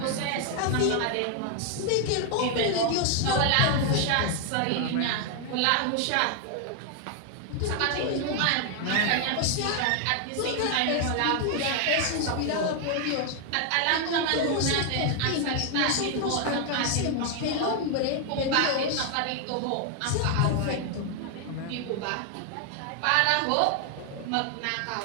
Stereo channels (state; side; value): different; both; correlation 0.00